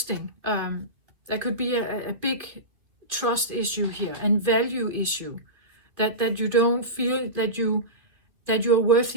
There could be a big trust issue here and value issue, that you don't feel that you're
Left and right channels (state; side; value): late; left; 2.5 ms